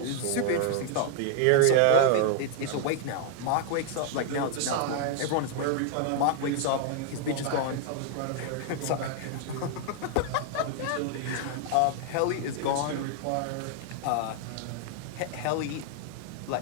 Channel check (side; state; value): both; different; correlation -0.01